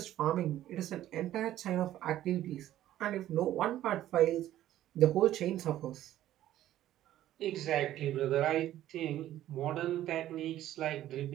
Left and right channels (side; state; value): left; quieter; 13.1 dB